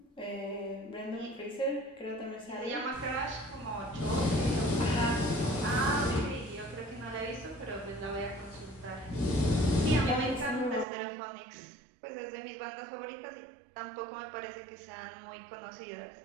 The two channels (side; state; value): left; drops out; at 10.9 s